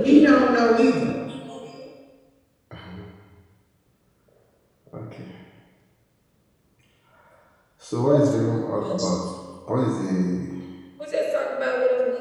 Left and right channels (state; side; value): identical; both; correlation 1.00